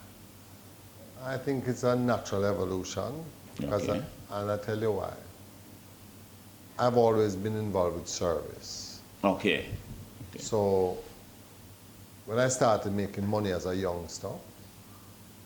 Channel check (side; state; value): both; identical; correlation 1.00